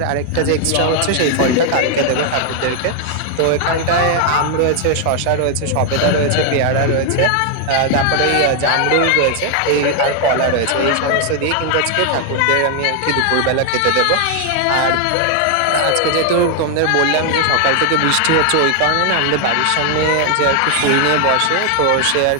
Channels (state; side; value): different; both; correlation 0.00